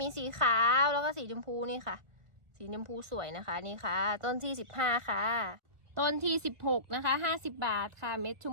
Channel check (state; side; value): late; left; 1.4 ms